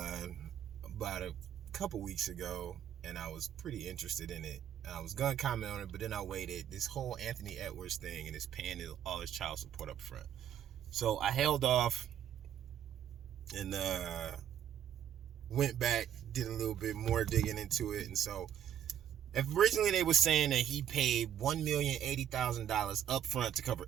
about a couple weeks ago, and I was pretty interested in it. I was gonna comment on it, but then I waited. This whole Anthony Edwards thing and his paying all his child support up front. So I held off and went back, did a little bit more digging into it, and so originally they were saying that he paid $1,080,000 up front to cover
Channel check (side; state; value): left; quieter; 9.9 dB